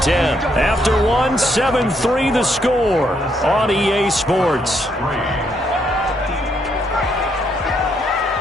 10. After one, 7-3 the score on EA Sports.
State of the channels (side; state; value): both; normal; correlation 0.74